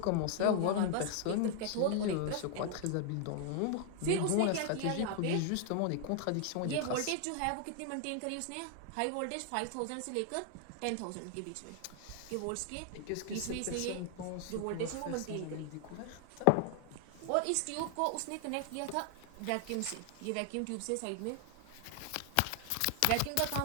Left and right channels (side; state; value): both; different; correlation 0.00